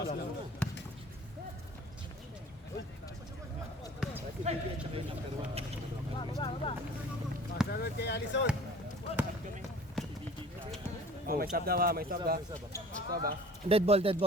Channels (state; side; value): normal; both; correlation 0.46